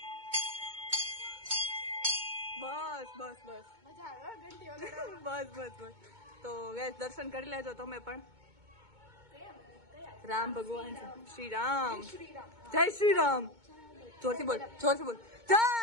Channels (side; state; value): left; late; 2.2 ms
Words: બસ બસ બસ મજા આવે હો, ઘંટી વગાડવાની. બસ બસ બસ. તો ગાઈઝ દર્શન કરી લેજો તમે પણ. રામ ભગવાન છે, શ્રી રામ. જય શ્રી રામ. જોરથી બોલ, જોરથી બોલ. જય